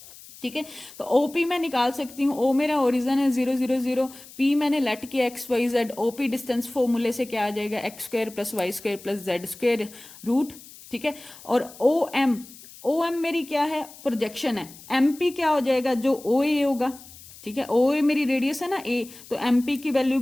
ठीक है, तो ओपी मैं निकाल सकती हूँ, ओ मेरा ओरिजन है 0 0 0, पी मैंने लेट किया x Y z, OP distance फॉर्मूले से क्या आ जाएगा? X square plus y square plus z square root. ठीक है, और ओ एम मेरी क्या है? प्रोजेक्शन है। एम पी क्या हो जाएगा? जो ओ ए होगा। ठीक है, ओ ए मेरी रेडियस है ना ए, तो एम पी की वैल्यू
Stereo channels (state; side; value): noise; left; hiss, 19 dB below the sound